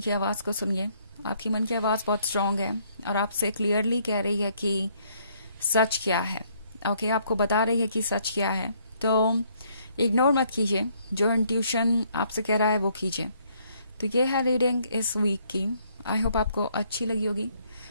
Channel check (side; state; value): both; inverted; correlation -0.67